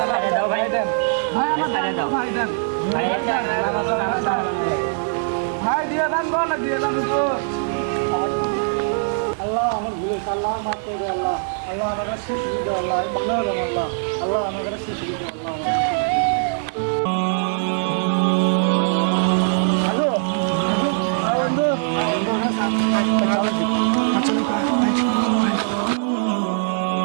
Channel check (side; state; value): left; silent; digital silence